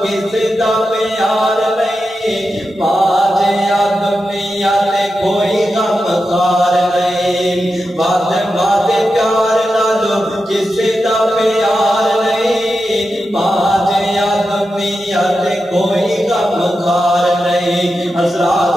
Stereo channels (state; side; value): normal; both; correlation 0.90